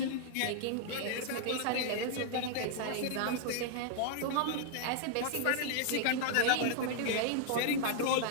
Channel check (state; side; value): different; both; correlation -0.01